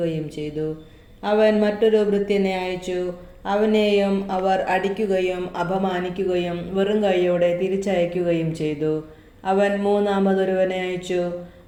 ചെയ്തു. അവൻ മറ്റൊരു ഭൃത്യനെ അയച്ചു. അവനെയും അവർ അടിക്കുകയും അപമാനിക്കുകയും വെറും കൈയോടെ തിരിച്ചയക്കുകയും ചെയ്തു. അവൻ മൂന്നാമതൊരുവനെ അയച്ചു.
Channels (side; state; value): both; identical; correlation 1.00